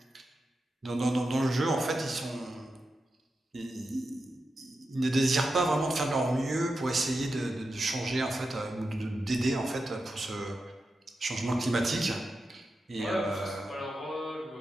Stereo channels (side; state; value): both; normal; correlation 0.90